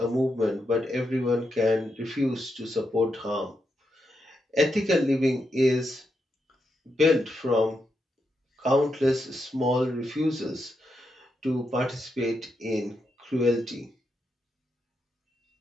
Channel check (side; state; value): both; normal; correlation 0.84